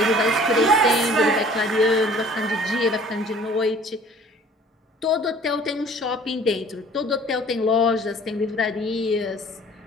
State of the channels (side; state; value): both; normal; correlation 0.51